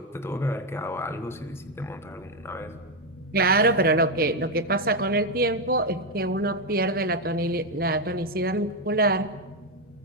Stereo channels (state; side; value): normal; both; correlation 0.05